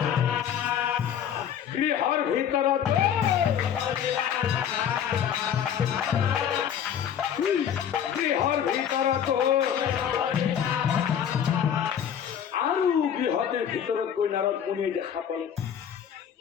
গৃহর ভিতৰত আৰু গৃহতে ভিতৰত গৈ নাৰদ মুনিয়ে দেখা পালে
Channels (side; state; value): right; quieter; 8.9 dB